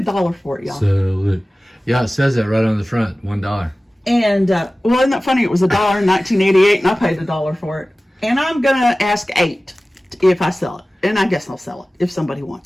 for it, y'all. Sell it. Yeah, it says that right on the front. $1. And, well, isn't that funny? It was $1 in 1988, and I paid $1 for it. And I'm going to ask $8 if I sell it. And I guess I'll sell it if somebody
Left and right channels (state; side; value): normal; both; correlation 0.97